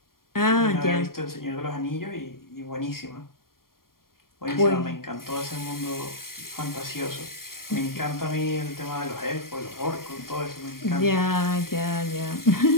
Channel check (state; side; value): late; right; 0.92 ms